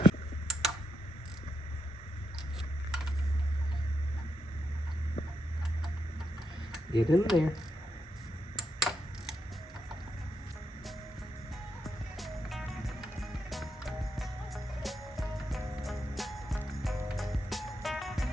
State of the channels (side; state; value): both; normal; correlation 0.83